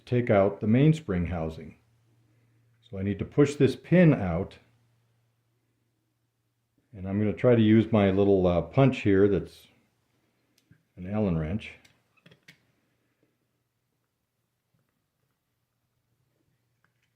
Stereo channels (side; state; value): both; identical; correlation 1.00